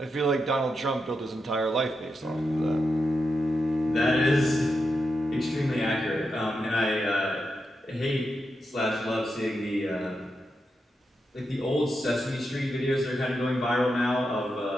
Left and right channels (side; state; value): both; normal; correlation 0.87